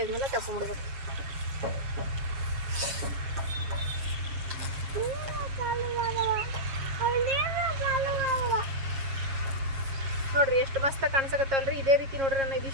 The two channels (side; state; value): left; late; 7.4 ms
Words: ಆದ್ಮೇಲೆ ತಕೊಂಡ್ಬಿಡ್ಬೇಕು ನೋಡ್ರಿ ಎಷ್ಟು ಮಸ್ತ್ ಕಾಣಿಸಕತ್ತಲ್ರಿ ಇದೇ ರೀತಿ ನೋಡ್ರಿ ನಾನು